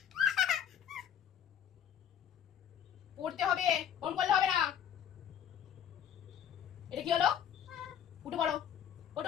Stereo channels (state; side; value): quieter; right; 9.2 dB